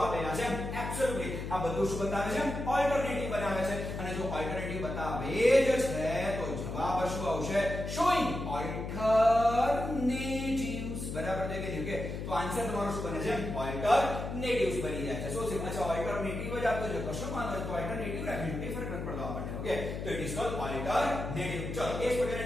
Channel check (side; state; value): left; noise; hum, 5 dB below the sound